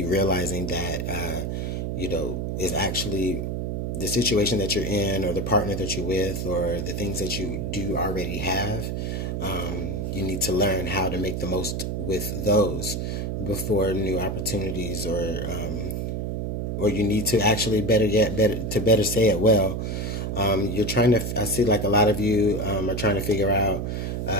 realizing that, is actually the situation that you're in, or the partner that you're with, or the things that you do already have. You need to learn how to make the most with those before new opportunities, or you need to actually better say it well. I see like a lot of you are trying to figure out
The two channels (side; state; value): right; noise; hum, 2 dB below the sound